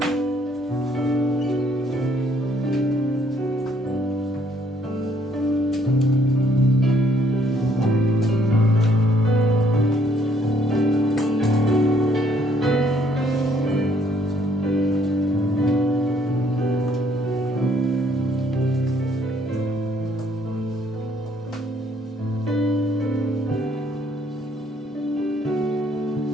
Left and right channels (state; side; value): normal; both; correlation 0.66